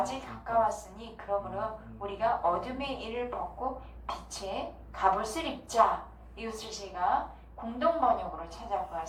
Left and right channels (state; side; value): identical; both; correlation 1.00